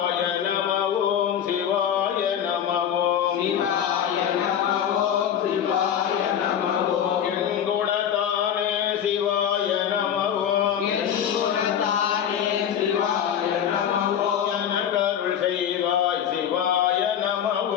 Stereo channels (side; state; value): right; quieter; 9.2 dB